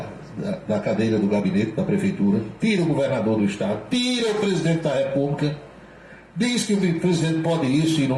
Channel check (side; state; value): both; identical; correlation 1.00